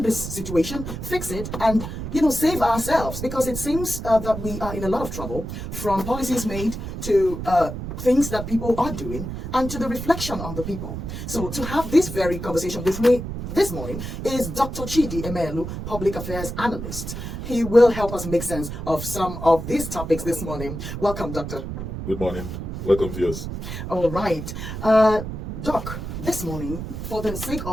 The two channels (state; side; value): noise; right; rumble, 7 dB below the sound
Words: this situation, fix it, and, save ourselves. Because it seems that we are in a lot of trouble, from policies made to things that people are doing, and to the reflection on the people. So to have this very conversation with me this morning is Dr. Chidi Emelu, Public Affairs Analyst. He will help us make sense of some of these topics this morning. Welcome, Doctor. Good morning. Welcome, viewers. All right. Doc, this morning, for the sake